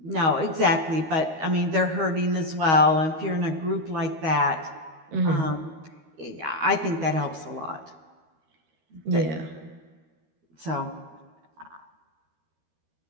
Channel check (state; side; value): late; left; 13 ms